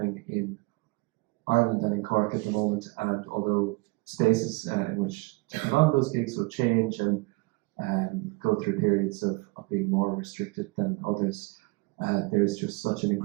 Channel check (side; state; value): left; quieter; 25.7 dB